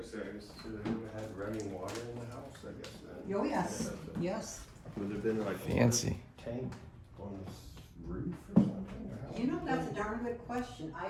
I said, I guess they would have had running water in the house, I guess then. Oh, yes, yes. Would have been like Fancy. a tank on this roof or something? Or how? You know, that's a darn good question.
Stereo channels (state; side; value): identical; both; correlation 1.00